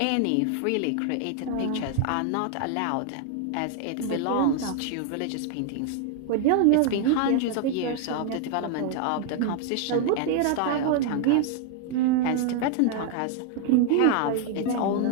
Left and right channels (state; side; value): different; both; correlation 0.00